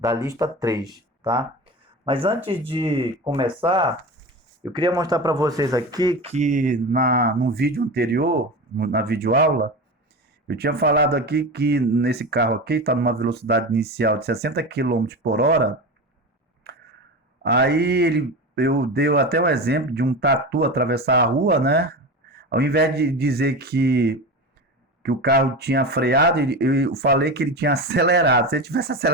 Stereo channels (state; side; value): normal; both; correlation 0.26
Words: lista 3, tá? Mas antes de começar, eu queria mostrar para vocês aqui que no vídeo anterior, na videoaula, eu tinha falado aqui que nesse carro aqui está numa velocidade inicial de 60 quilômetros por hora. Eu dei até um exemplo de um tatu atravessar a rua, né? Ao invés de dizer que o carro tinha freado, eu falei que ele tinha acelerado. Se ele tivesse